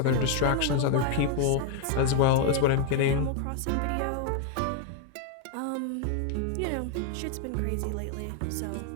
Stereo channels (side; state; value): both; different; correlation 0.00